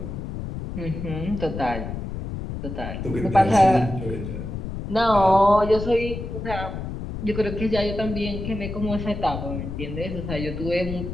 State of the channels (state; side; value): noise; left; rumble, 6 dB below the sound